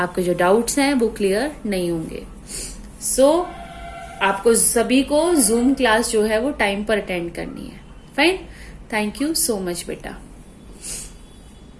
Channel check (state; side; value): identical; both; correlation 1.00